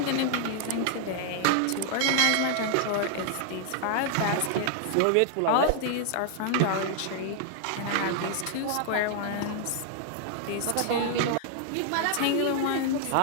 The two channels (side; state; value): both; different; correlation 0.00